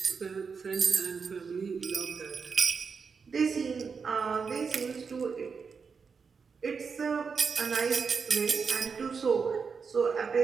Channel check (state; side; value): quieter; left; 5.6 dB